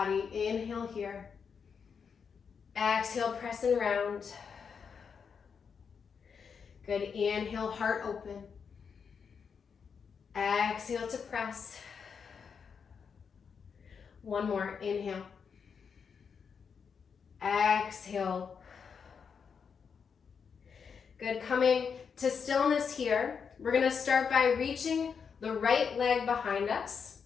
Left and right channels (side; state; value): right; quieter; 6.3 dB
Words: Inhale here. Exhale, press and round. Good, inhale, heart open. Exhale to press. One more, inhale. Exhale. Good, coming to stillness here. We're gonna start by reaching the right leg behind us,